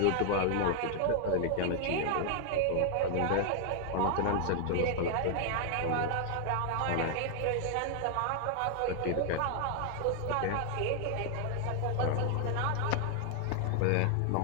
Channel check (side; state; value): both; different; correlation 0.00